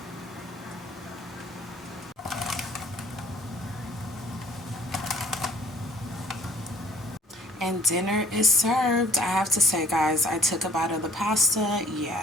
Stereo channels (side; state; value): both; normal; correlation 0.56